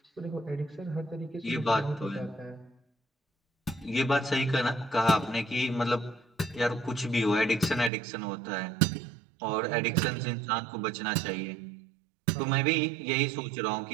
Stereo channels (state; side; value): drops out; left; at 7.9 s